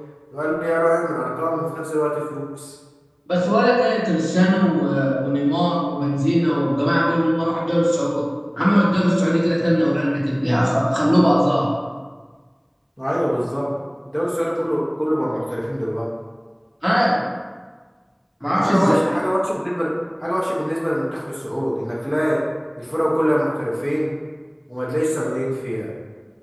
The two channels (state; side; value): identical; both; correlation 1.00